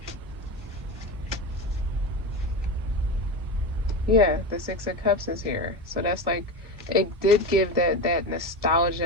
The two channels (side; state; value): both; normal; correlation 0.21